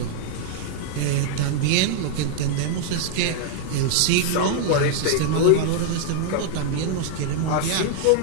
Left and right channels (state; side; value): different; both; correlation 0.00